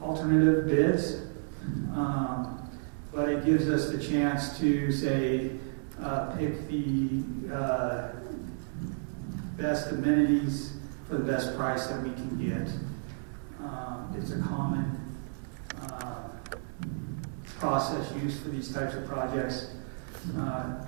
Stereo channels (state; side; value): silent; left; digital silence